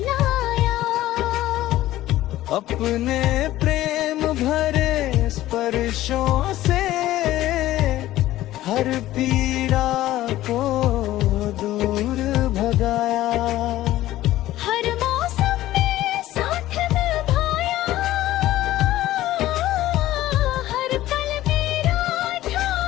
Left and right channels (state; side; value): quieter; right; 15.0 dB